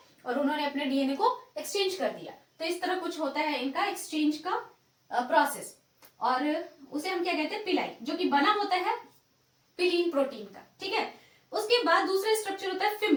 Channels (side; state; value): both; identical; correlation 1.00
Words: और उन्होंने अपने डीएनए को एक्सचेंज कर दिया। तो इस तरह कुछ होता है इनका एक्सचेंज का प्रोसेस, और उसे हम क्या कहते हैं, पिलाई, जो कि बना होता है पिलीन प्रोटीन का। ठीक है, उसके बाद दूसरा स्ट्रक्चर होता है